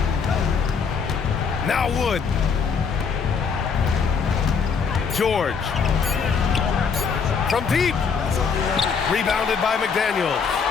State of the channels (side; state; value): right; quieter; 5.8 dB